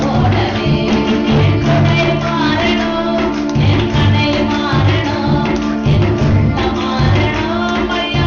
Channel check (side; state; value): both; identical; correlation 1.00